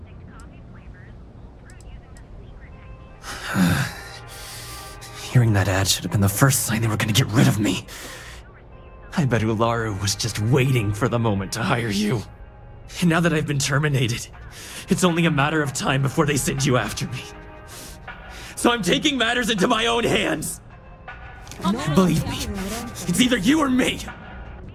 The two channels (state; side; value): identical; both; correlation 1.00